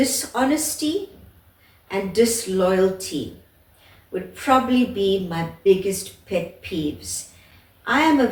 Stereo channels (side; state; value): both; identical; correlation 1.00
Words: and disloyalty would probably be my biggest pet peeves. I am a